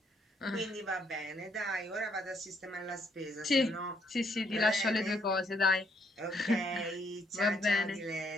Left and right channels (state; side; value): normal; both; correlation 0.71